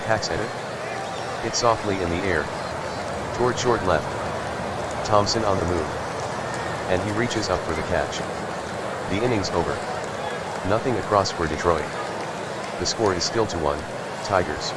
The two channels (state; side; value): identical; both; correlation 1.00